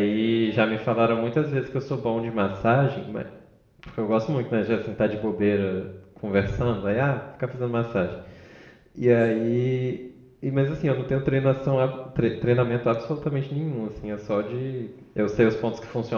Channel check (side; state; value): both; identical; correlation 1.00